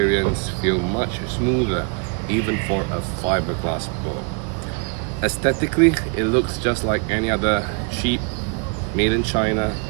feel much smoother, even for a fiberglass bow. Aesthetically, it looks just like any other cheap, made in China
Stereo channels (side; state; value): left; quieter; 36.3 dB